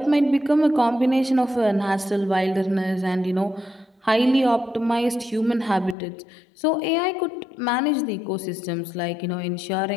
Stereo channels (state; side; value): drops out; right; at 6.0 s